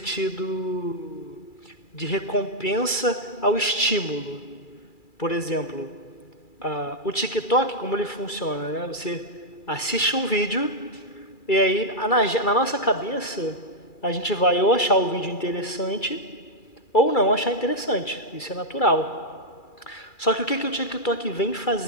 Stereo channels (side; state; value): right; late; 2.4 ms